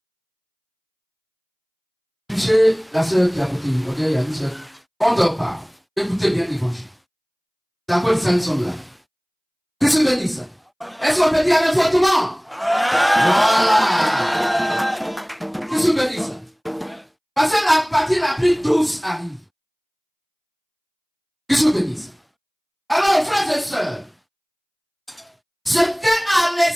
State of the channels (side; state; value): both; identical; correlation 1.00